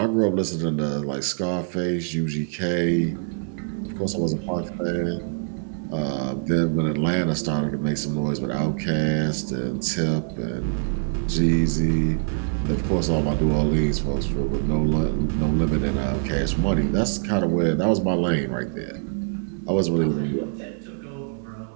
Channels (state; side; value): silent; left; 62 dB below the other